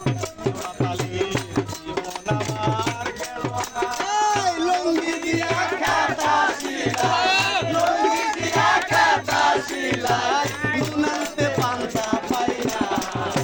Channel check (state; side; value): identical; both; correlation 1.00